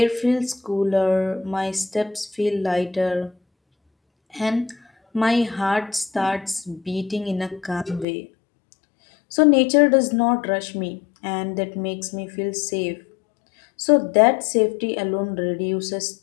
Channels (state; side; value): drops out; right; at 8.1 s